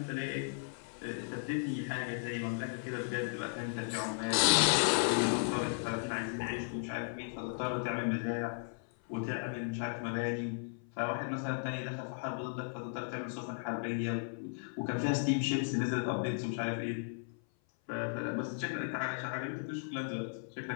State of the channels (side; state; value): right; silent; 54 dB below the other